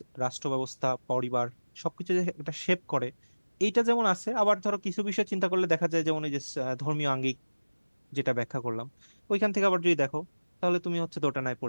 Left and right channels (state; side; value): inverted; both; correlation -1.00